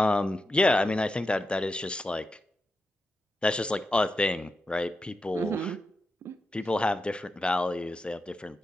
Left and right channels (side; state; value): both; normal; correlation 0.88